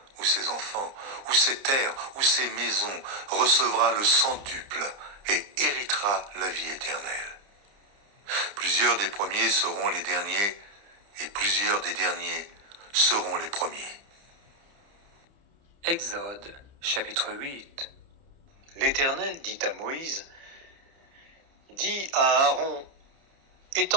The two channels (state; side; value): late; left; 30 ms